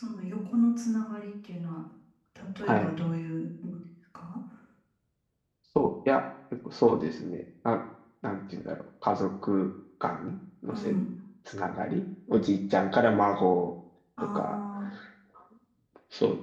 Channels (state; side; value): identical; both; correlation 1.00